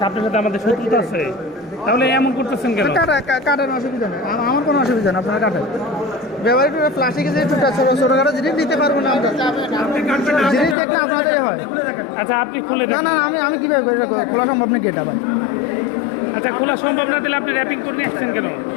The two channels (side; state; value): right; drops out; at 10.8 s